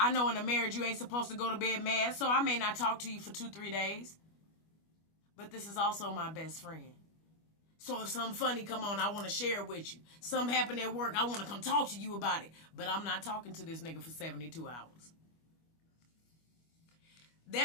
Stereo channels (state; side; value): late; right; 25 ms